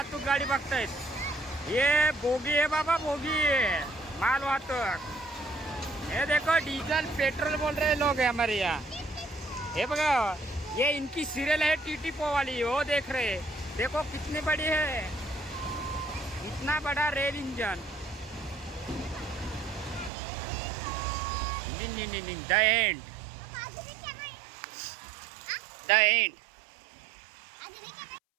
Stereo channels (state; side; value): drops out; left; at 20.1 s